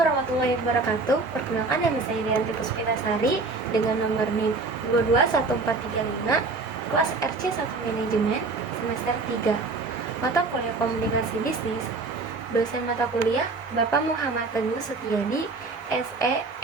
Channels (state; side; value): quieter; left; 3.8 dB